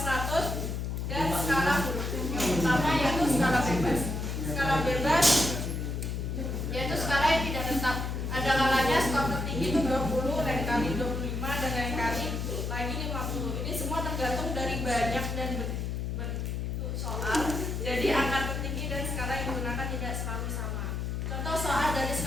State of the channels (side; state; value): left; noise; hum, 2 dB below the sound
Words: dan skala huruf. Yang pertama yaitu skala bebas. Skala bebas yaitu skala yang tidak tetap. Ada kalanya skor tertinggi itu 20, lain kali 25, dan lain kali lagi 50. Ini semua tergantung dari banyak dan bentuk soal. Jadi angka tertinggi dan skala yang digunakan tidak selalu sama. Contoh soal dari